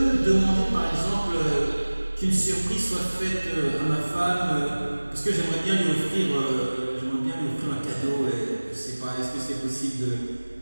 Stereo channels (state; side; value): inverted; both; correlation -1.00